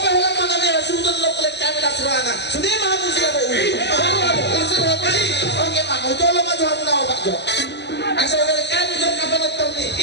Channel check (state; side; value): late; right; 0.50 ms